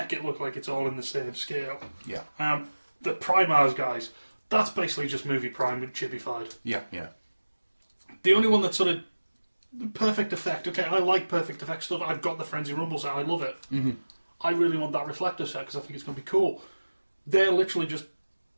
it look like it's all in the same scale. Yeah. The Primars guys, that's basically just Movie Prime with chibified. Yeah. The only one that's sort of Perfect Effect. Okay, I like Perfect Effect stuff. I've got the Frenzy Rumble set. I love it. Mm-hmm. I really want that Reflector set because I think it's going to be cool. They're literally just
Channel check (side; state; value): both; inverted; correlation -1.00